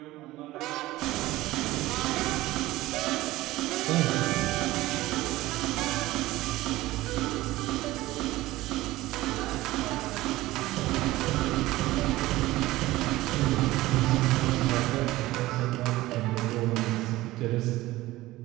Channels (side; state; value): left; quieter; 17.7 dB